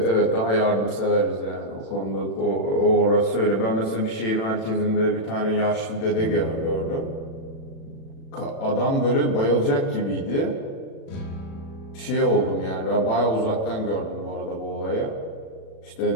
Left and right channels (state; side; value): late; right; 36 ms